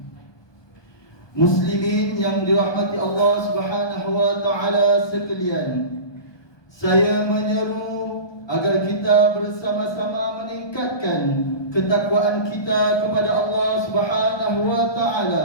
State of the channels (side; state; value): right; late; 1.2 ms